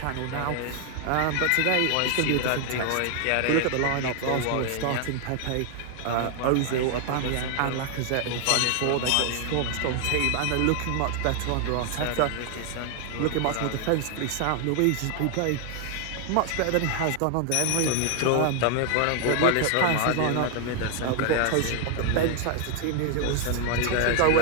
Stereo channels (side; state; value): both; different; correlation 0.00